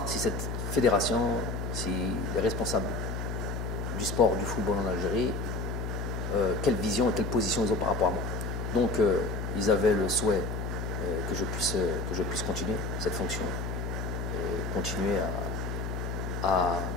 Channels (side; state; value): left; noise; hum, 4 dB below the sound